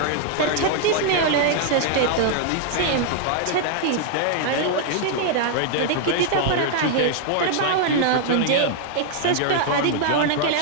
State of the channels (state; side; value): different; both; correlation -0.01